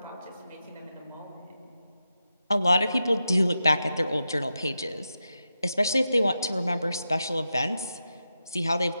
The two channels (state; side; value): inverted; both; correlation -0.89